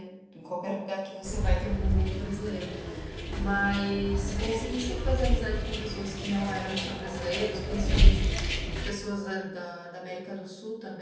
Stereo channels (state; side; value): identical; both; correlation 1.00